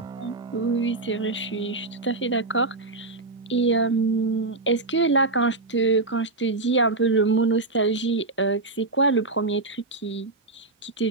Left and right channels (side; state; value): left; quieter; 3.3 dB